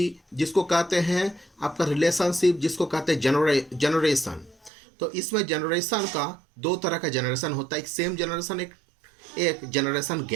जिसको कहते हैं आपका रिलेशनशिप, जिसको कहते हैं जनरेशन। तो इसमें जनरेशन का 2 तरह का जनरेशन होता है। एक सेम जनरेशन, एक जनरेशन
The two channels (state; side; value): drops out; left; at 4.7 s